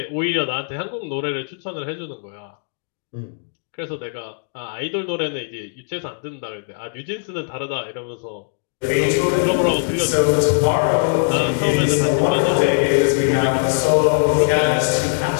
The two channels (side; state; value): right; silent; 65 dB below the other